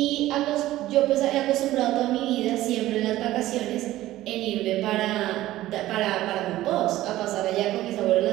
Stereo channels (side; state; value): left; quieter; 15.5 dB